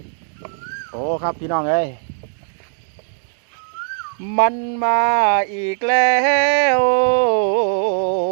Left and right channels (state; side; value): silent; left; 66 dB below the other